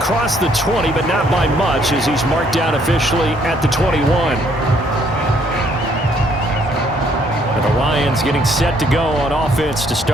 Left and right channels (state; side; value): normal; both; correlation 0.66